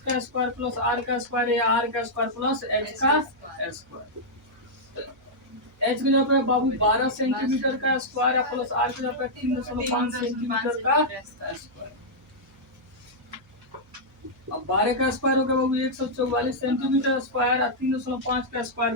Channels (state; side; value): noise; right; hum, 29 dB below the sound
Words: का स्क्वायर प्लस आर का स्क्वायर या आर का स्क्वायर प्लस एच का स्क्वायर। एच की जगह पे बाबू 12 सेंटीमीटर का स्क्वायर है प्लस आर की जगह पे 3.5 सेंटीमीटर का स्क्वायर। अब 12 का स्क्वायर हो गया बाबू 144 सेंटीमीटर स्क्वायर, 3.5 का स्क्वायर